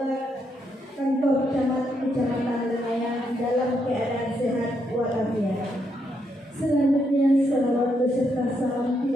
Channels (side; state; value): both; normal; correlation 0.78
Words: kantor Kecamatan Lengayang dalam keadaan sehat walafiat. Selanjutnya, salawat beserta salam